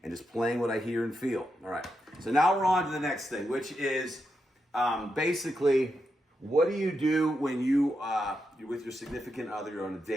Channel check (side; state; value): both; normal; correlation 0.85